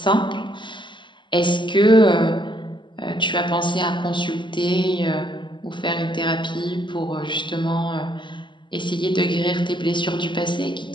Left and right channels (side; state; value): right; late; 0.23 ms